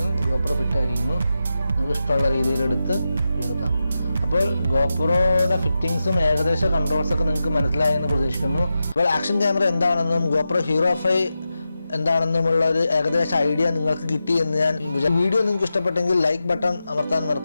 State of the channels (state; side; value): inverted; both; correlation -0.90